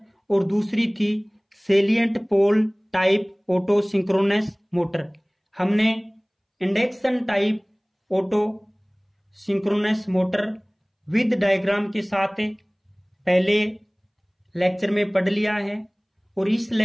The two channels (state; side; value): identical; both; correlation 1.00